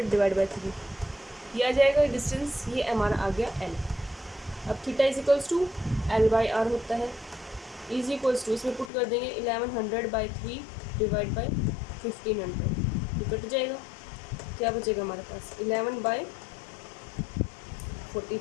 डिवाइड बाई 3, ये आ जाएगा डिस्टेंस, ये हमारा आ गया L। अब theta is equals to L/R होता है, इज इक्वल्स टू, इसमें पुट कर देंगे 1100 बाई 3 डिवाइड बाई 1500, ये कट जाएगा। क्या बचेगा हमारे पास, 11/15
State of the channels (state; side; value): drops out; right; at 8.9 s